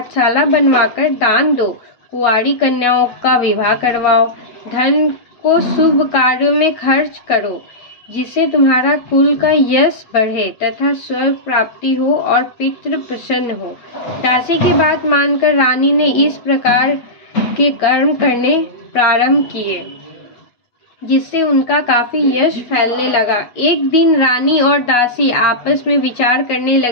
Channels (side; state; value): right; late; 8.2 ms